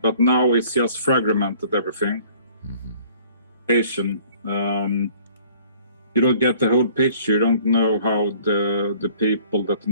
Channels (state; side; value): inverted; both; correlation -0.54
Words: now it's just fragmented everything. You don't get the whole picture. You don't know how the people that